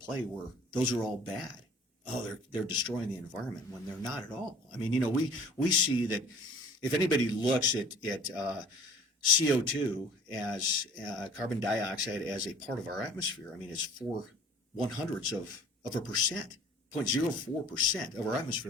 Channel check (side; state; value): both; normal; correlation 0.49